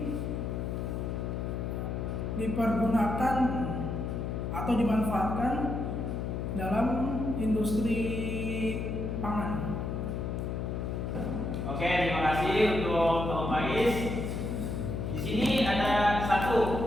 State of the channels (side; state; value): left; noise; hum, 3 dB below the sound